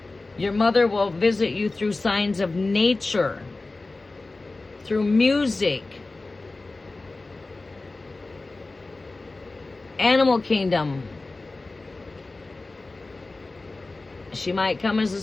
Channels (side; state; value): right; quieter; 3.3 dB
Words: Your mother will visit you through signs of nature, through music, animal kingdom. She might come as a